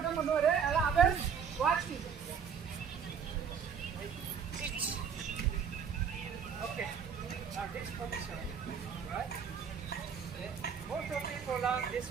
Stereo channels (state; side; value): quieter; left; 7.1 dB